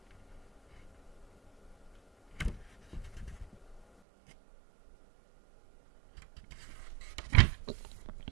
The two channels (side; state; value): left; drops out; at 3.9 s